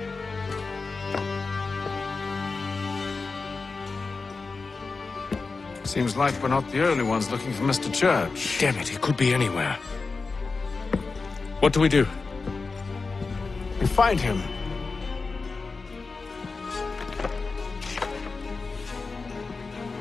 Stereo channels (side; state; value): right; quieter; 4.2 dB